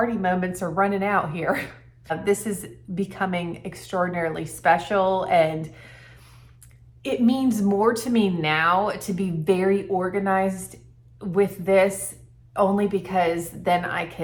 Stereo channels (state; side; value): identical; both; correlation 1.00